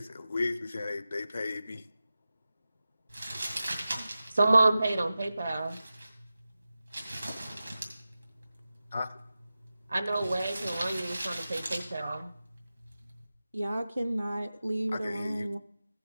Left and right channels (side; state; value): both; inverted; correlation -0.94